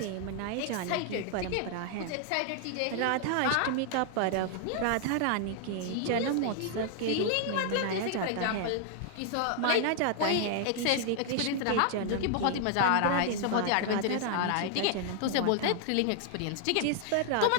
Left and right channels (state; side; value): different; both; correlation 0.00